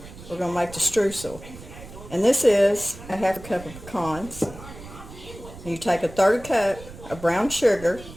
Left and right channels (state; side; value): noise; right; rumble, 16 dB below the sound